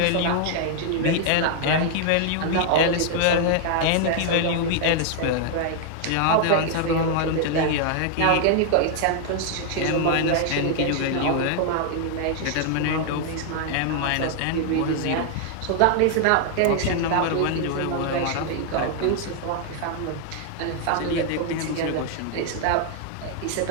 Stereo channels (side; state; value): both; different; correlation 0.00